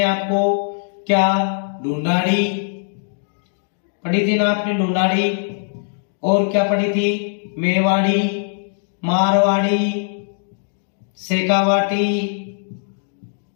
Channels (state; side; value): silent; right; digital silence